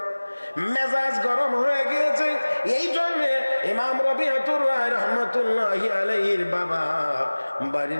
মেজাজ গরম হয়ে গিয়েছে। এই জন্য ইমাম রবিআতুর রায় রাহমাতুল্লাহি আলাইহির বাবা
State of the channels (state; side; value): inverted; both; correlation -1.00